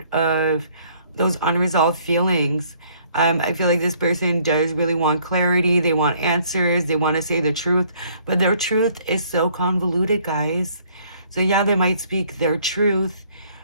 of those unresolved feelings. I feel like this person does really want clarity. They want answers. They want to say the truth, but their truth is so convoluted, guys. So yeah, they might speak their truth,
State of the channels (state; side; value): inverted; both; correlation -0.62